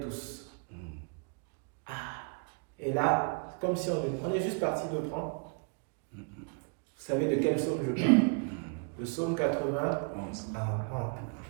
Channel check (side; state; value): left; quieter; 39.1 dB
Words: Ah, et là, comme si on est juste parti de prendre. Vous savez de quel psaume je parle? Le psaume 91.